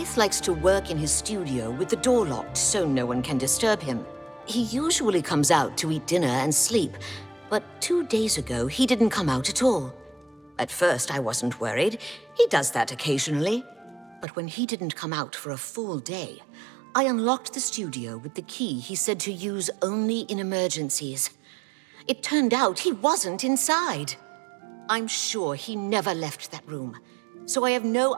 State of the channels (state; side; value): drops out; left; at 14.2 s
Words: likes to work in his studio with the door locked so no one can disturb him. He usually comes out to eat dinner and sleep, but 2 days ago he didn't come out at all. At first I wasn't worried. He does that occasionally. But when he didn't come out for a full day, I unlocked the studio with the key he said to use only in emergencies. It turned out he wasn't inside. I'm sure he never left that room. So I have no